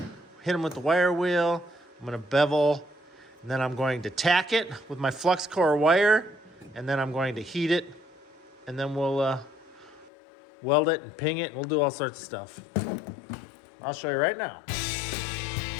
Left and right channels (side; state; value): right; drops out; at 10.1 s